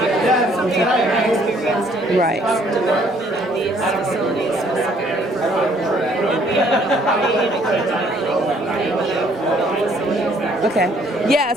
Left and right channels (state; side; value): normal; both; correlation 0.63